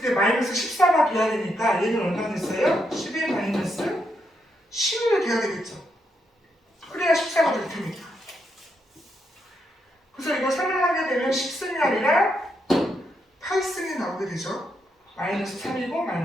마이너스 14가 돼야 되니까 얘는 얼마 됐어요? 10-11이 돼야 되겠죠. 그래야 14가 될 테니까. 그래서 이거 설명하게 되면 10승이 아니라 8승이 나오게 되죠. 마이너스 3이고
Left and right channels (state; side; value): normal; both; correlation 0.80